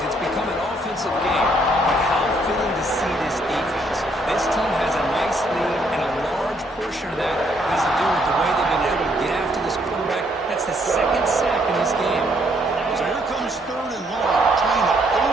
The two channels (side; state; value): both; normal; correlation 0.70